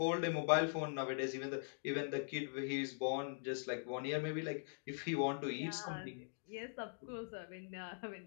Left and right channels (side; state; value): right; silent; digital silence